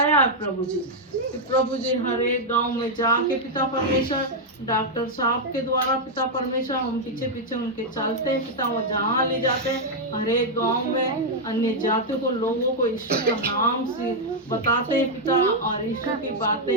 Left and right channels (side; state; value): both; normal; correlation -0.02